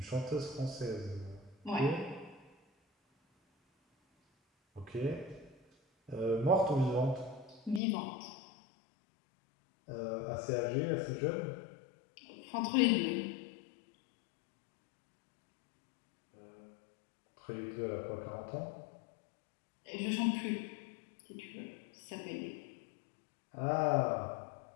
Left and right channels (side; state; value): right; drops out; at 7.8 s